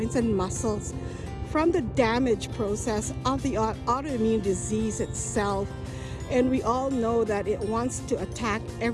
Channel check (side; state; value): both; identical; correlation 1.00